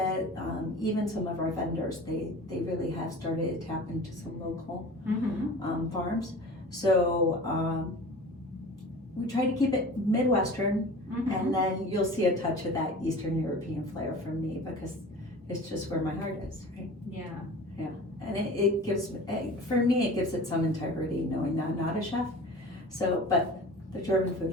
Even some of our vendors, they really have started to tap into some local farms. So we try to keep it Midwestern, and then you'll see a touch of that Eastern European flair from me, because it's just where my heart is, right? Yeah. And it gives, for me, it gives it some integrity knowing that I'm not a chef. So, but the German food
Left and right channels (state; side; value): normal; both; correlation 0.39